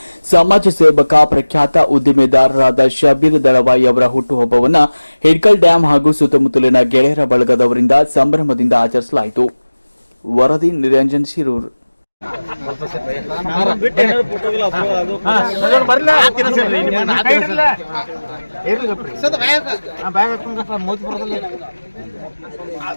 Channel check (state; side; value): inverted; both; correlation -1.00